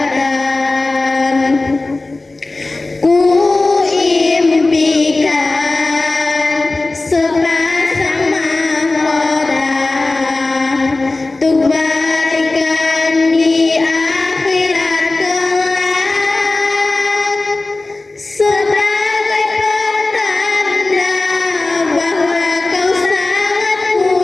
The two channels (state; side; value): quieter; right; 3.2 dB